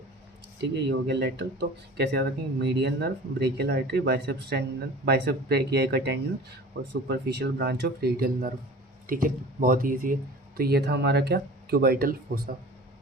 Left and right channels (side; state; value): both; normal; correlation 0.41